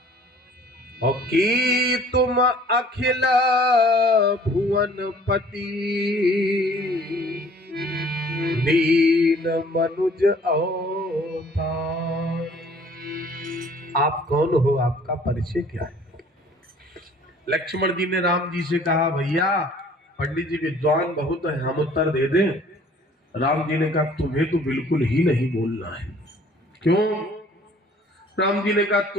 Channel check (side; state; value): both; normal; correlation 0.53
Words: और की तुम अखिल भुवन पति, दीन मनुज अवतार। आप कौन हो, आपका परिचय क्या है? लक्ष्मण जी ने राम जी से कहा भैया पंडित जी विद्वान बहुत है, हम उत्तर दे दें? राम जी ने कहा तुम्हें तो बिल्कुल ही नहीं बोलना है। क्यों? राम जी ने कहा